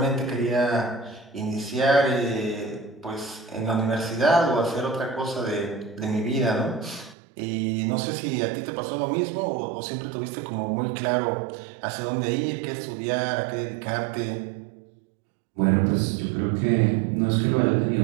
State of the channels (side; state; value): left; drops out; at 7.2 s